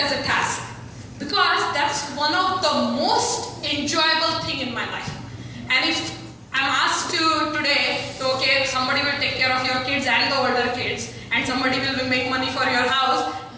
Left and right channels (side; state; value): both; identical; correlation 1.00